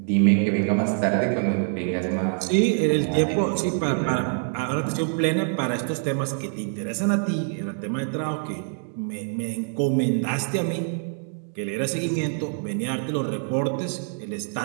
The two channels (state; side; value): silent; left; digital silence